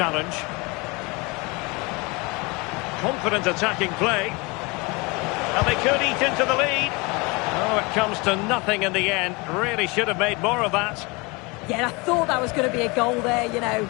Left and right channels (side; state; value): right; quieter; 26.8 dB